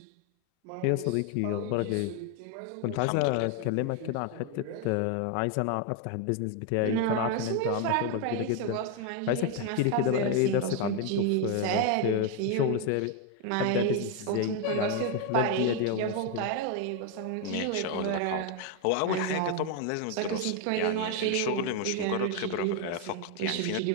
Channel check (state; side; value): different; both; correlation 0.01